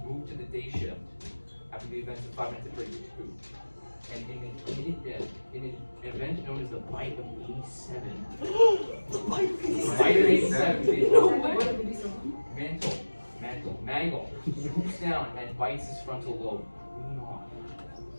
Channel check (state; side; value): inverted; both; correlation -1.00